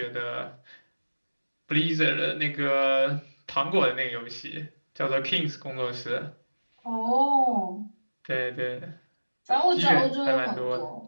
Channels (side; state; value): both; inverted; correlation -1.00